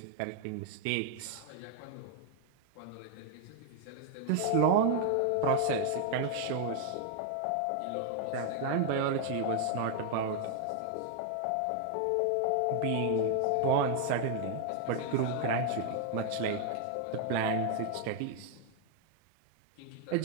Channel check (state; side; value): different; both; correlation 0.00